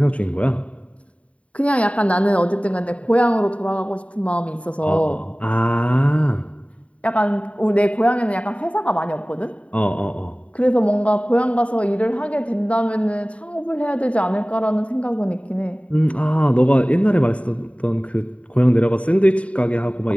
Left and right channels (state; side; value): late; right; 0.065 ms